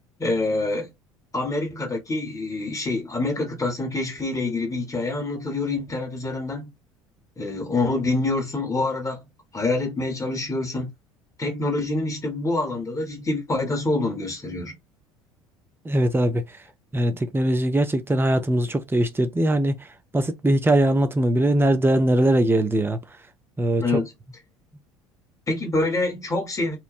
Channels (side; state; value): both; normal; correlation 0.77